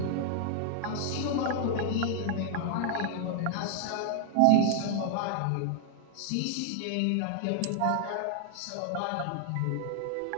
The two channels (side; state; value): both; different; correlation -0.01